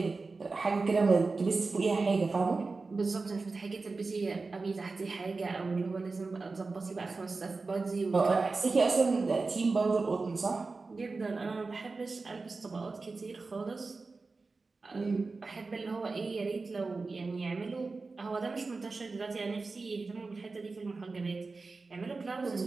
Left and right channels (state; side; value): quieter; left; 3.9 dB